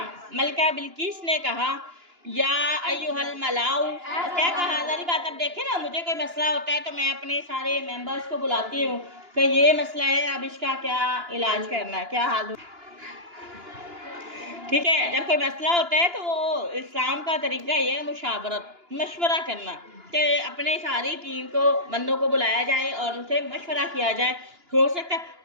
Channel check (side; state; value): left; late; 2.9 ms